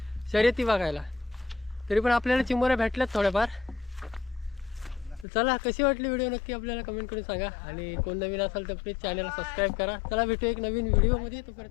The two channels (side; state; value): right; drops out; at 5.2 s